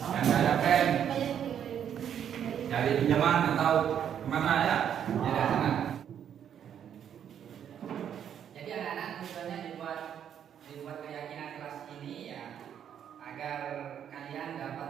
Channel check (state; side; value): quieter; left; 9.1 dB